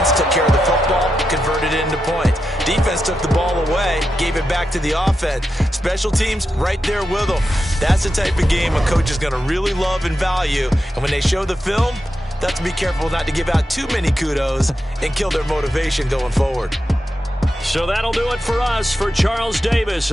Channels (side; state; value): both; normal; correlation 0.88